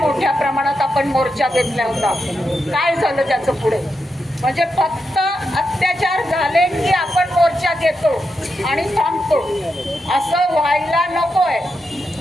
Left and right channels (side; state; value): both; normal; correlation 0.86